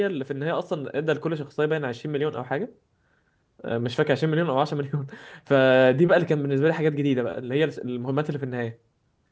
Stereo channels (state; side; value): identical; both; correlation 1.00